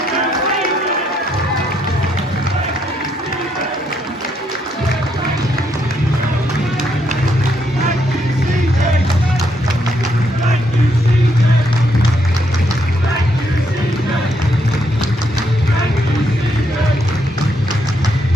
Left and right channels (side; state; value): both; normal; correlation 0.75